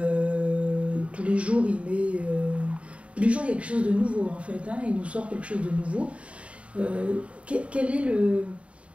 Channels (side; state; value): left; late; 0.062 ms